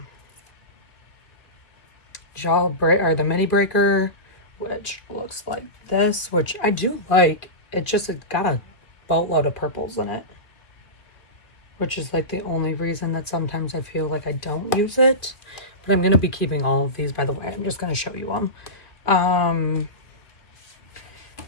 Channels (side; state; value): right; late; 2.3 ms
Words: the mini breaker, which looks like this, which I do like. It's got a boatload of purples in it, which is like the only reason that sometimes I feel like I don't use it. But I'm going to be keeping all of these, by the way. I'm just going to show you them.